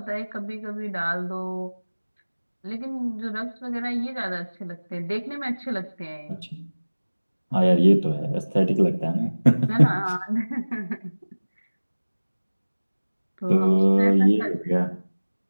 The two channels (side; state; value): both; inverted; correlation -1.00